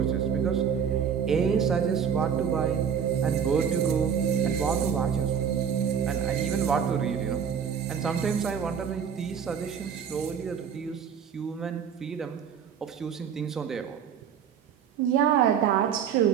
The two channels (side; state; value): left; quieter; 7.6 dB